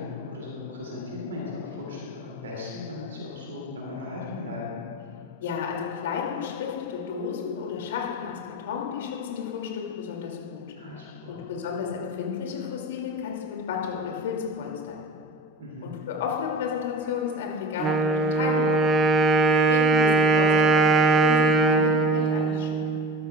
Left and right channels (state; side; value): normal; both; correlation 0.32